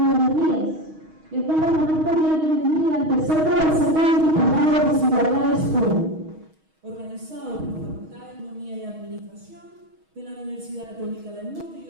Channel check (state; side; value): late; left; 6.3 ms